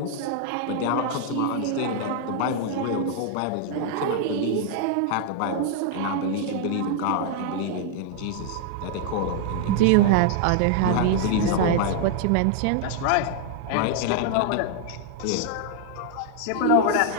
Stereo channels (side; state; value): both; different; correlation 0.00